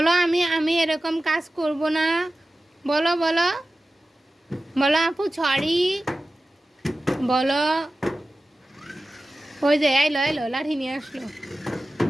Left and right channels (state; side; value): normal; both; correlation 0.95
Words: আমি আমি এরকম কাজ করব না। বলো বলো বলো আপু সরি বলো। ওই যে এলো এলো, লাঠি নিয়ে আসলো।